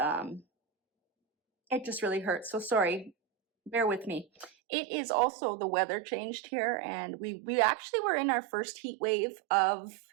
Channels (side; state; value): left; drops out; at 4.5 s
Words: it just really hurts. So sorry, bear with me. It is also the weather changed here, and we actually were in our first heat wave of